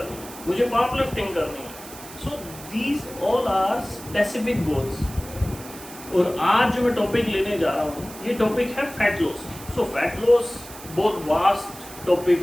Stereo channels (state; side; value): noise; right; hiss, 16 dB below the sound